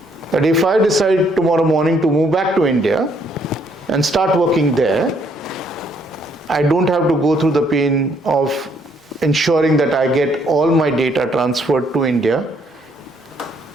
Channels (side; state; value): both; normal; correlation 0.68